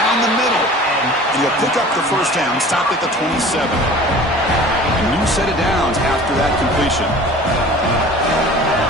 the middle. And he'll pick up the first down, stopped at the 27. A new set of downs after that completion.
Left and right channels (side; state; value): both; normal; correlation 0.43